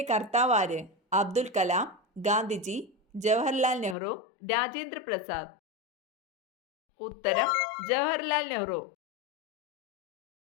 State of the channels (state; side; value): drops out; right; at 4.0 s